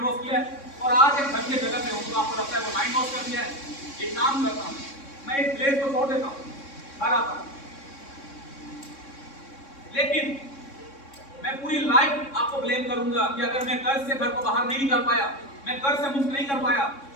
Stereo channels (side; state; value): right; late; 3.6 ms